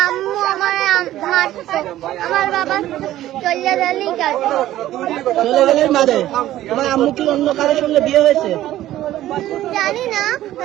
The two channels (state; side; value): quieter; left; 14.0 dB